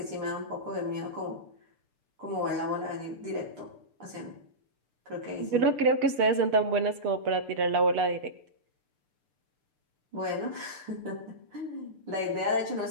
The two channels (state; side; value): late; left; 6.8 ms